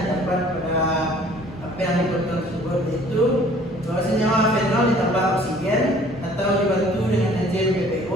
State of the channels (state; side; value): normal; both; correlation 0.54